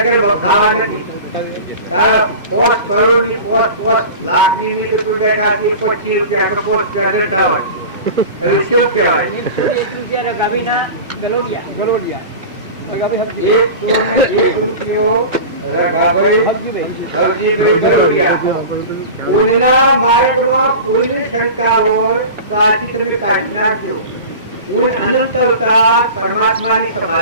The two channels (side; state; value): both; inverted; correlation -0.34